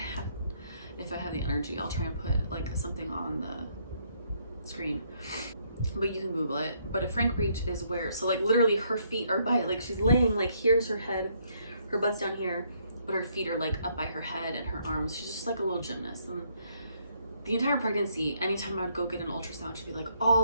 I have the energy, I'll try and put like something on the screen, but you can Google it. But a frank breech is where, so like literally her feet are by, like she's laying, like here's her head, her butt's down here, but her feet are like up by her head and her arms. She's just like a little gymnast. And the entire pregnancy, anytime I would go get an ultrasound, she'd be like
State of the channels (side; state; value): both; inverted; correlation -0.70